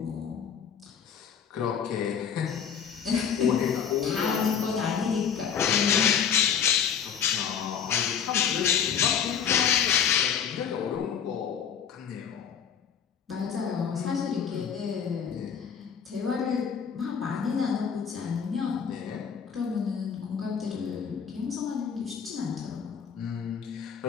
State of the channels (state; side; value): quieter; right; 7.6 dB